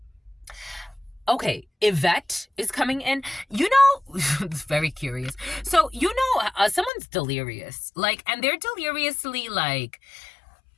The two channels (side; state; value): right; drops out; at 6.9 s